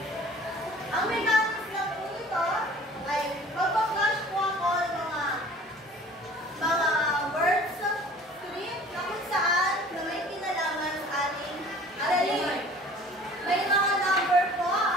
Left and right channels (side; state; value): both; normal; correlation 0.48